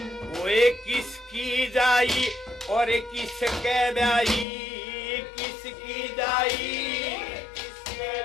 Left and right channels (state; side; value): drops out; right; at 4.5 s